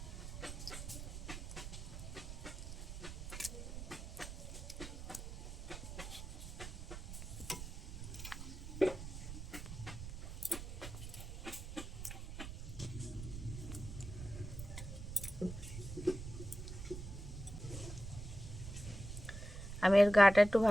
আমি এর গাটা একটু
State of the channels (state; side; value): noise; right; rumble, 8 dB below the sound